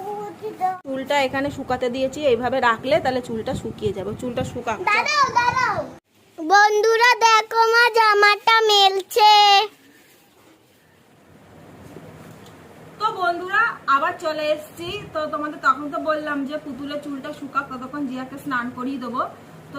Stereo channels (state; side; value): identical; both; correlation 1.00